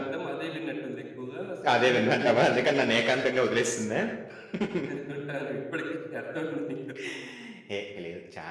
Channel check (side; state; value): both; identical; correlation 1.00